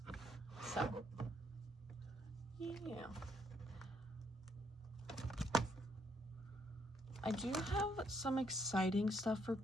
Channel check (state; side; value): normal; both; correlation 0.72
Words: So, yeah. I do have some exciting stuff for